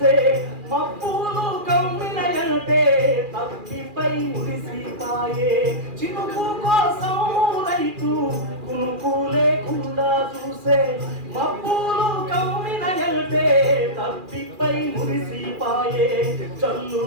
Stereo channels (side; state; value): left; late; 2.4 ms